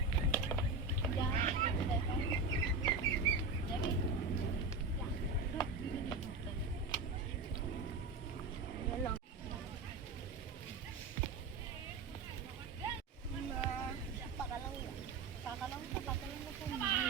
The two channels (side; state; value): left; quieter; 3.9 dB